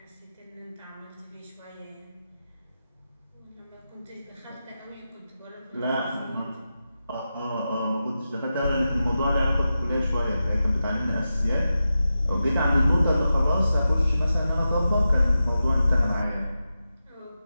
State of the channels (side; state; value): both; inverted; correlation -0.91